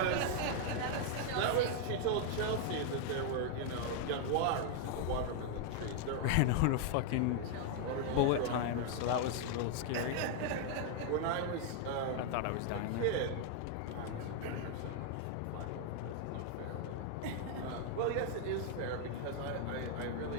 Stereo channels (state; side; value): different; both; correlation 0.00